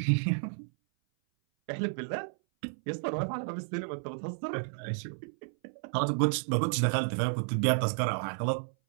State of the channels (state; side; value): silent; left; 57 dB below the other